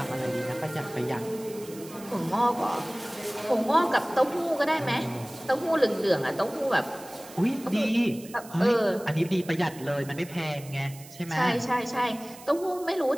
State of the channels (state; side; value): noise; right; hiss, 18 dB below the sound